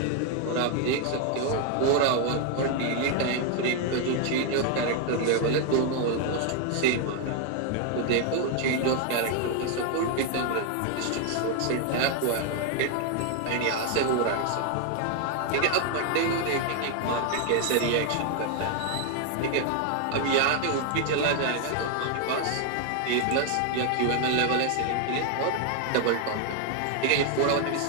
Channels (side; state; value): both; different; correlation 0.00